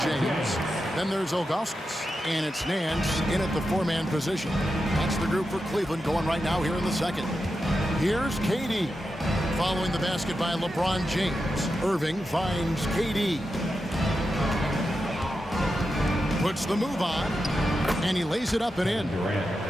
James. Then there's Ilgauskas, and it's Nance in at the 4-man position. That's the group for Cleveland going right now here in the second. Here's KD. Following the basket by LeBron James. Irving finds KD. Puts the move on, and he lays it up and in.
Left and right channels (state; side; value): normal; both; correlation 0.89